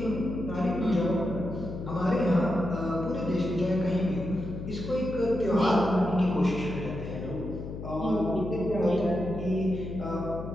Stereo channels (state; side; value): noise; left; hum, 8 dB below the sound